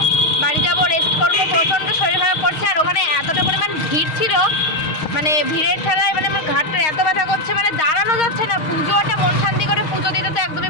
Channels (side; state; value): right; late; 6.4 ms